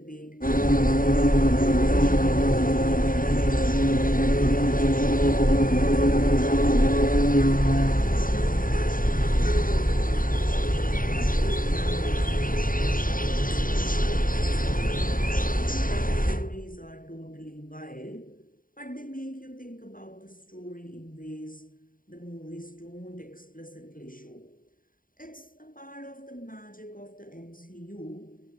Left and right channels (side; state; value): right; late; 0.40 ms